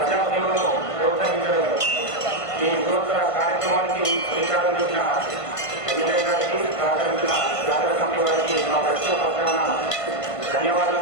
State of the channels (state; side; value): late; right; 1.5 ms